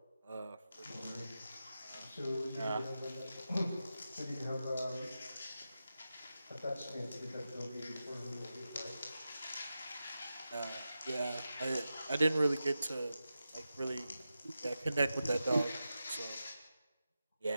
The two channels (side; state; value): both; inverted; correlation -0.91